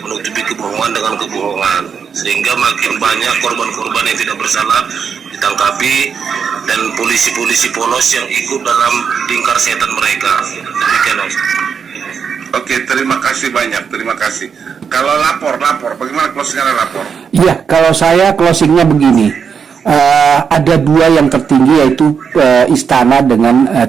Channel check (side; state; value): left; quieter; 6.6 dB